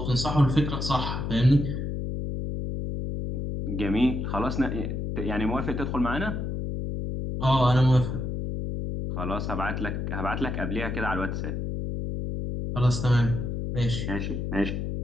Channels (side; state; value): left; noise; hum, 3 dB below the sound